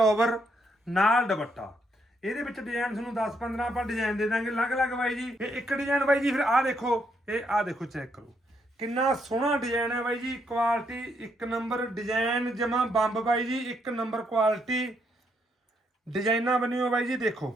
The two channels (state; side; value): normal; both; correlation 0.75